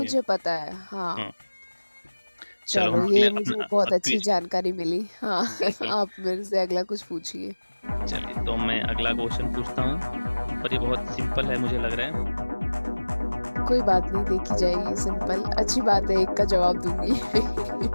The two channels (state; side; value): inverted; both; correlation -1.00